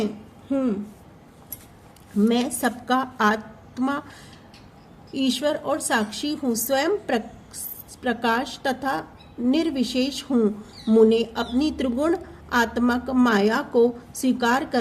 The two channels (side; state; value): both; identical; correlation 1.00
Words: हूँ। मैं सबका आत्मा, ईश्वर और साक्षी हूँ। स्वयं प्रकाश तथा निर्विशेष हूँ। मुने अपनी त्रिगुण आत्मक माया को स्वीकार